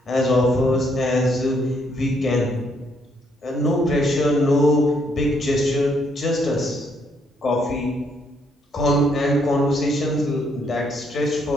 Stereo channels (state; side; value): normal; both; correlation 0.72